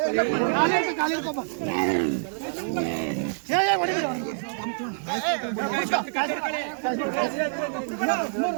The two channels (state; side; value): silent; left; 61 dB below the other